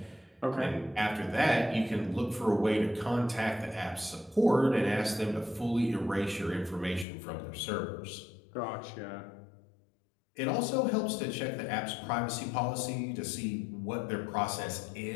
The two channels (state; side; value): drops out; right; at 7.1 s